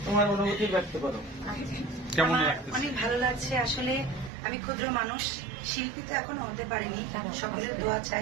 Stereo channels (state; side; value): drops out; left; at 4.3 s